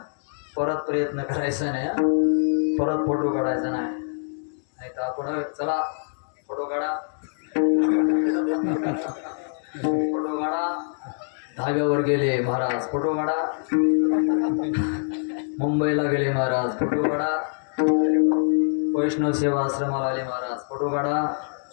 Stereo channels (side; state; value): right; silent; digital silence